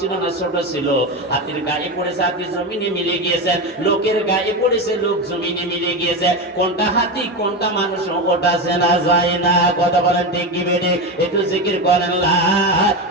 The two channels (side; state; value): both; normal; correlation 0.17